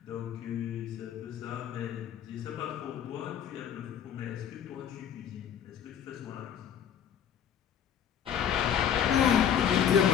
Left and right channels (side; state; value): right; quieter; 9.0 dB